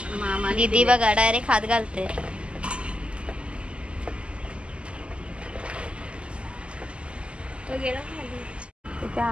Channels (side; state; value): left; late; 0.054 ms